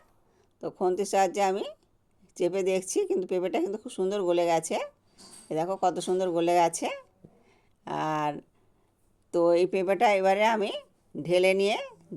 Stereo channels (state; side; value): identical; both; correlation 1.00